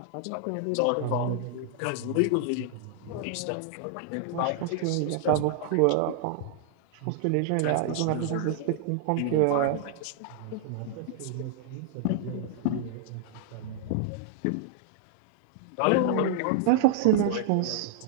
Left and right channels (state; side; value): different; both; correlation -0.01